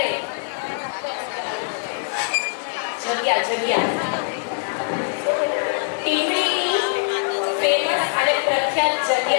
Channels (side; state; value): right; silent; 64 dB below the other